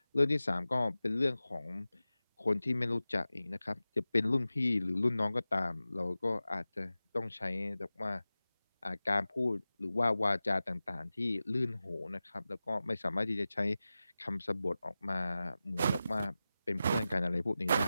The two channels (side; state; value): both; inverted; correlation -0.95